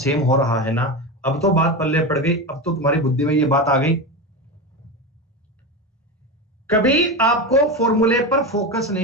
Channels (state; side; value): normal; both; correlation 0.20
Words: हो रहा है ना। अब तो बात पल्ले पड़ गई, अब तो तुम्हारी बुद्धि में ये बात आ गई। कभी आपको फॉर्मूले पर फोकस